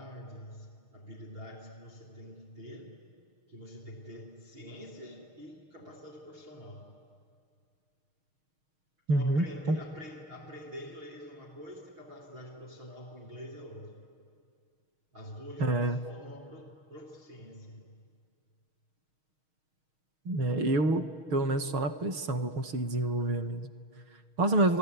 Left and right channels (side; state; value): left; late; 6.4 ms